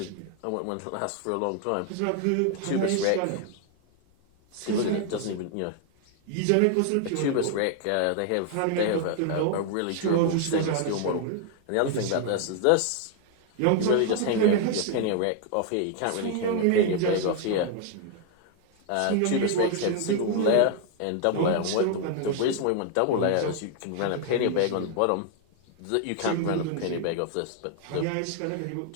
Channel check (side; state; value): both; different; correlation 0.00